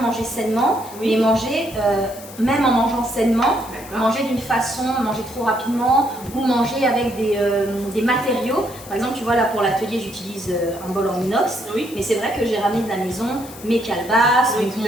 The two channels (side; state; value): left; noise; hiss, 17 dB below the sound